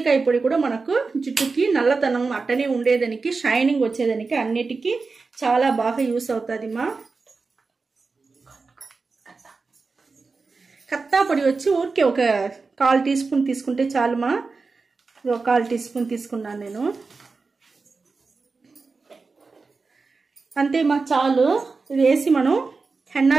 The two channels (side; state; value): left; quieter; 4.2 dB